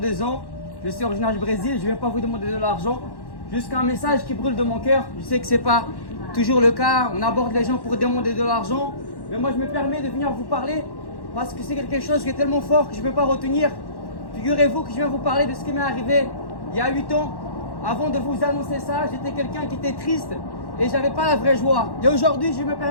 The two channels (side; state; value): right; late; 1.1 ms